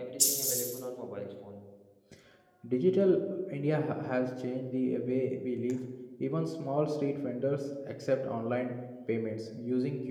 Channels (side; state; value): both; identical; correlation 1.00